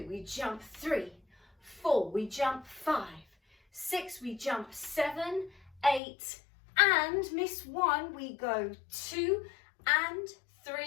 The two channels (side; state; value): right; drops out; at 6.0 s